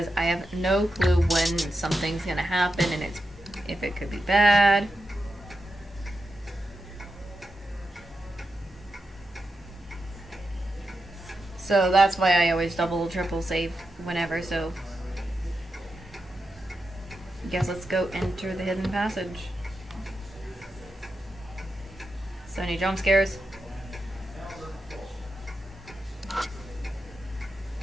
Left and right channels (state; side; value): normal; both; correlation 0.88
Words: I have no clue when something's gonna happen and if it could be bad. So that's why I always double, triple save whenever, so... Guess let's go enter the hidden passage. So any jump scares?